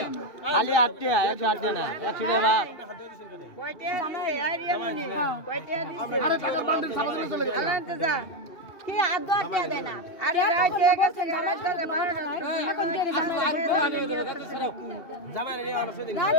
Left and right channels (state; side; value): late; right; 2.7 ms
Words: খালি 8 টাকা 108 টাকা না 100 টাকা ভাগ কয়টা দিছে আরিয়া মনি কয়টা দিছে আরে টাকার বান্ডেল সামনে চলে গেল আনতে যা কি আদো আটটা দেয় না আরে রাইতে গেছে রাইতে 12টা এখন দেরি জামাই নিয়ে আমার সাথে না